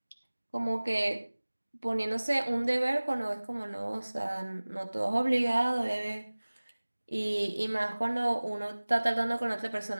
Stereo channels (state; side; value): inverted; both; correlation -1.00